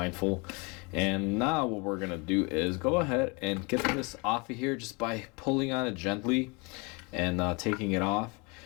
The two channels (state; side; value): quieter; right; 29.8 dB